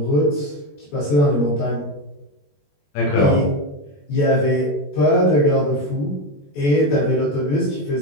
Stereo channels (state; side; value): late; right; 21 ms